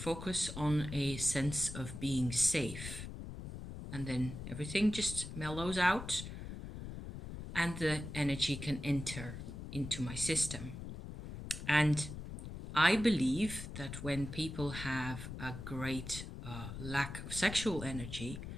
on a sense of being safe. And then everything just mellows out and the energy can enter into my system. And I believe that when people have a great lack of sexual energy,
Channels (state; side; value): noise; left; rumble, 9 dB below the sound